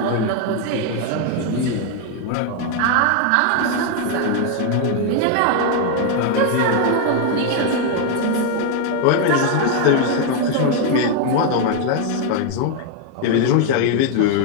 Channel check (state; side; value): different; both; correlation 0.01